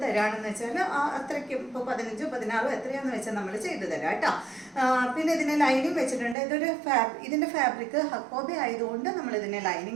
തരാണെന്ന് വെച്ചാൽ അത്രയ്ക്കും ഇപ്പോൾ 15 16 എത്രയാണെന്ന് വെച്ചാൽ നമ്മൾ ചെയ്തു തരാം കേട്ടോ. പിന്നെ ഇതിന് ലൈനിങ് വെച്ചിട്ടുണ്ട്. ഇതിൻ്റെ ഫാബ്രിക് ഹക്കോബി ആയതുകൊണ്ട് നമ്മൾ ഇതിനെ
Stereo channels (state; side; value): drops out; left; at 6.4 s